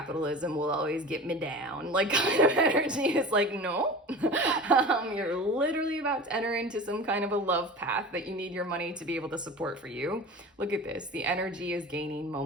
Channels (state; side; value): normal; both; correlation 0.35